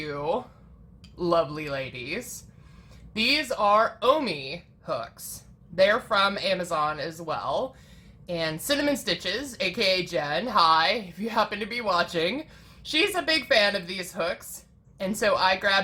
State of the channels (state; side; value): identical; both; correlation 1.00